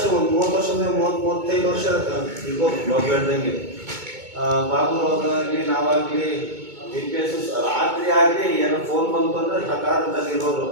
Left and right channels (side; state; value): left; late; 2.2 ms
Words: ಒಂದು 30 ವರ್ಷದಿಂದ 30-35 ವರ್ಷ ಇರ್ಬೋದು ಬಾಬು ಹೇಳ್ದಂಗೆ. ಬಾಬು ಆಗಲಿ ನಾವಾಗಲಿ GPS ರಾತ್ರಿ ಆಗಲಿ ಏನೋ ಫೋನ್ ಬಂತು ಅಂದರೆ ಸಕಾಲದಲ್ಲಿ ಇರೋರು.